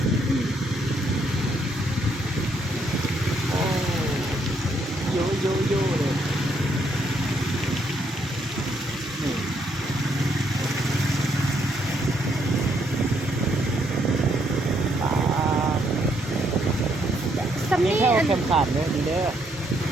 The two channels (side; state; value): both; normal; correlation 0.72